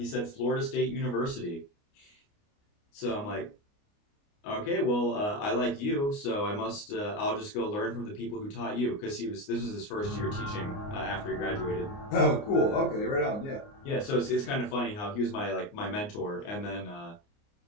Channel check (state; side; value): late; right; 29 ms